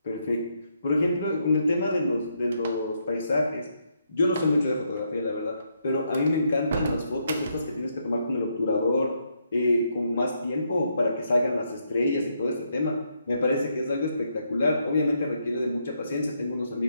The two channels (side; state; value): both; inverted; correlation -0.77